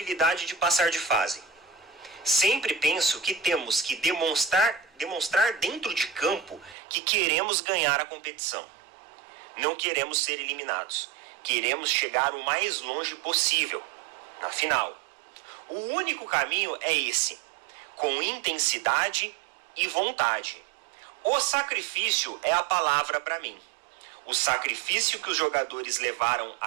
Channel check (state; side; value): drops out; left; at 6.8 s